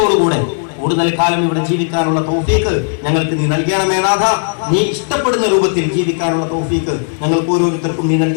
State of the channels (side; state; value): right; silent; digital silence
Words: കൂടുതൽ കാലം ഇവിടെ ജീവിക്കാനുള്ള തൗഫീഖ് ഞങ്ങൾക്ക് നീ നൽകണമേ നാഥ. നീ ഇഷ്ടപ്പെടുന്ന രൂപത്തിൽ ജീവിക്കാനുള്ള തൗഫീഖ് ഞങ്ങൾക്ക് ഓരോരുത്തർക്കും നീ